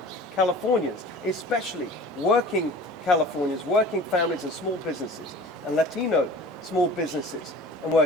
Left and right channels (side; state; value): both; normal; correlation 0.42